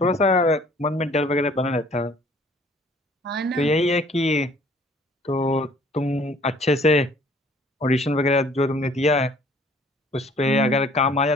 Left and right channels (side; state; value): both; normal; correlation 0.56